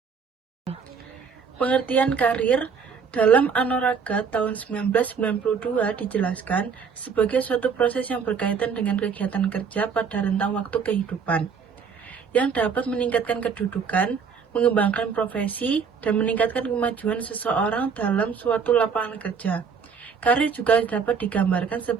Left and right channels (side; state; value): left; quieter; 6.1 dB